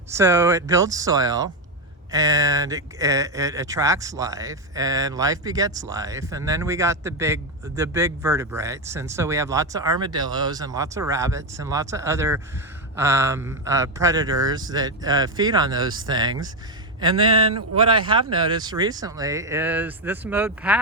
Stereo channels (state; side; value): normal; both; correlation 0.07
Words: so it builds soil, and it attracts life, and life begets life. And then we got the big vertebrates, and so we have lots of armadillos and lots of rabbits and lots of other predators that feed on those things. And then what I have noticed recently is this mowed